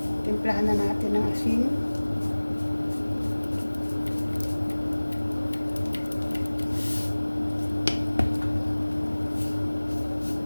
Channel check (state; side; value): inverted; both; correlation -1.00